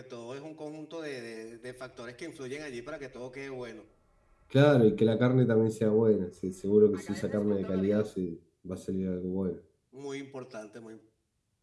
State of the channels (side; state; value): both; identical; correlation 1.00